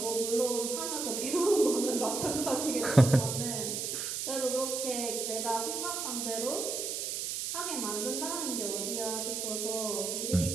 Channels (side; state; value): right; noise; hiss, 3 dB below the sound